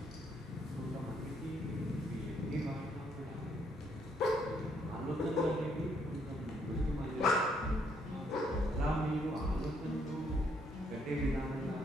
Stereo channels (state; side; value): normal; both; correlation 0.71